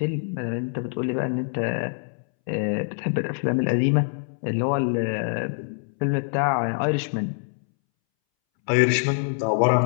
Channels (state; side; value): silent; right; 62 dB below the other